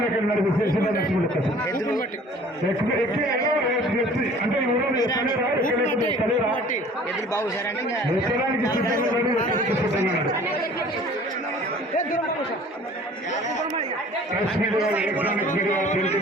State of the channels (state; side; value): normal; both; correlation 0.50